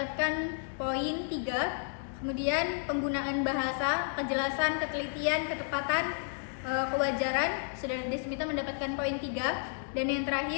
poin 3. Kemudian penggunaan bahasa, kejelasan, ketelitian, ketepatan, kewajaran, Saudara Desmita mendapatkan poin 3. Dan yang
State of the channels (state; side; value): silent; right; digital silence